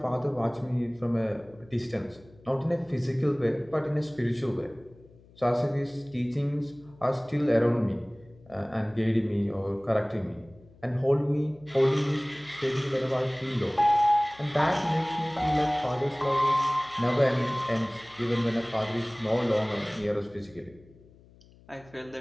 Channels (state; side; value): noise; left; hum, 26 dB below the sound